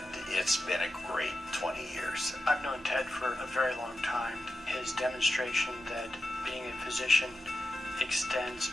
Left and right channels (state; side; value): normal; both; correlation 0.90